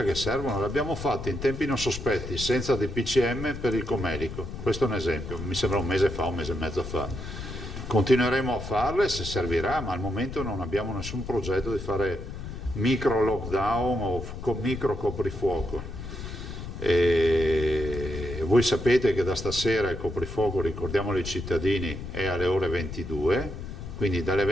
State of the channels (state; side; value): noise; left; rumble, 9 dB below the sound